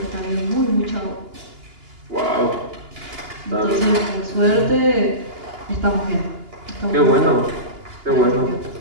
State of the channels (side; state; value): left; late; 2.8 ms